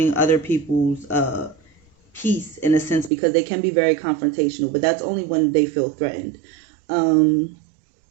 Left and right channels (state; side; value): drops out; left; at 3.1 s